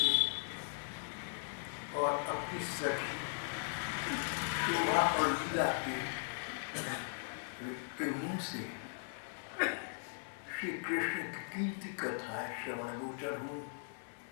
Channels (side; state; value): right; silent; 52 dB below the other